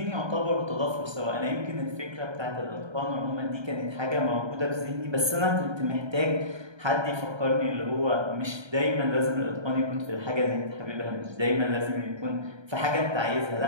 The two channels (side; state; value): left; late; 1.3 ms